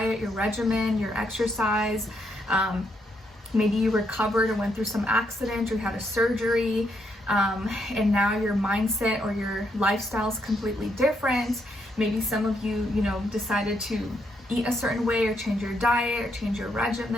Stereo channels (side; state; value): both; normal; correlation 0.77